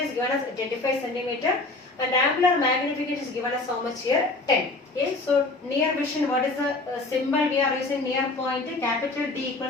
given as 25 centimeter and angular magnification is given as how much here? 10. Okay, so near vision, what is the symbol we are using? Near point, capital D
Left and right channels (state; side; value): quieter; right; 3.1 dB